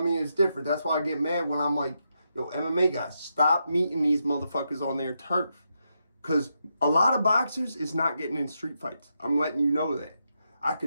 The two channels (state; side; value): inverted; both; correlation -0.83